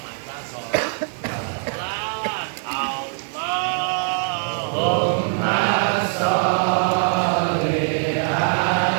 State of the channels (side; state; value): left; silent; 55 dB below the other